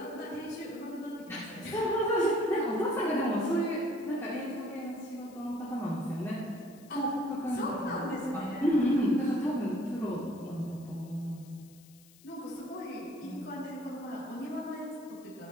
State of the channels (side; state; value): left; noise; hiss, 25 dB below the sound